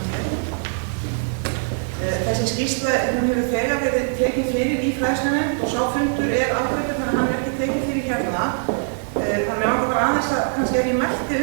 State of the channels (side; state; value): left; silent; 64 dB below the other